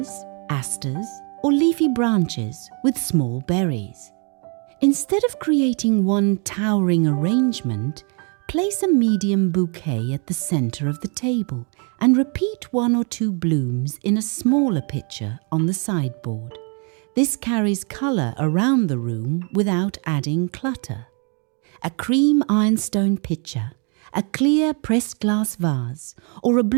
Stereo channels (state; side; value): quieter; left; 37.0 dB